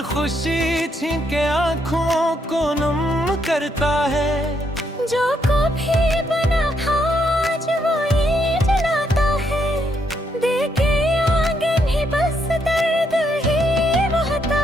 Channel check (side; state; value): both; normal; correlation 0.76